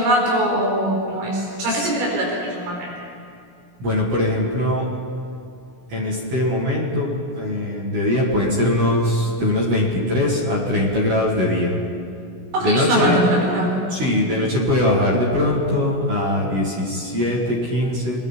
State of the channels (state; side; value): late; left; 16 ms